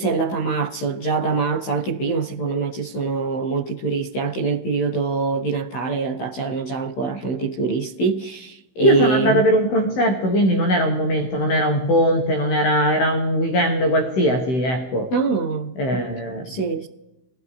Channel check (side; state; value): right; late; 16 ms